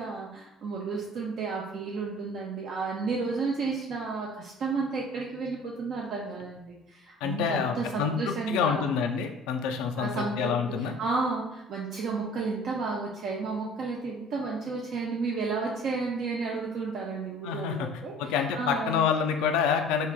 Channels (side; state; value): both; normal; correlation 0.46